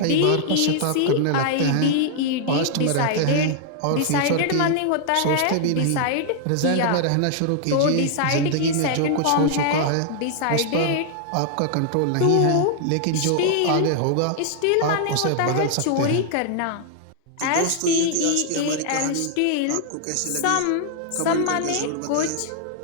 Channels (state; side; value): different; both; correlation -0.01